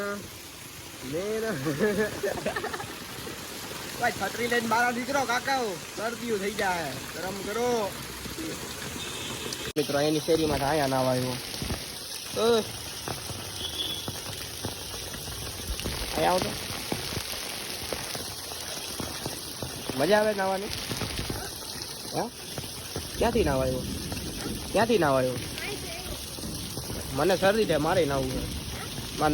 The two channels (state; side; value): identical; both; correlation 1.00